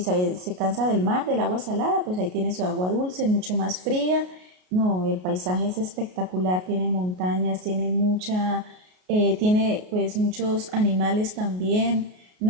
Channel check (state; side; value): late; left; 33 ms